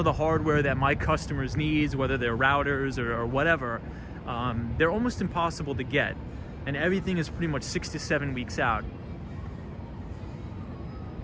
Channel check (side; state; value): both; identical; correlation 1.00